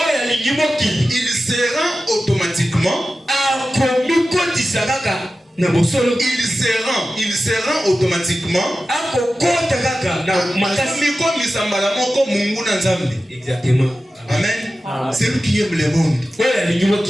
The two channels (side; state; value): both; normal; correlation 0.94